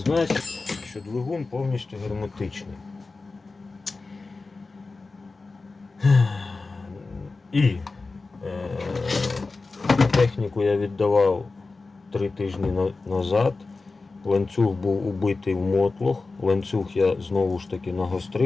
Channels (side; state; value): right; quieter; 3.8 dB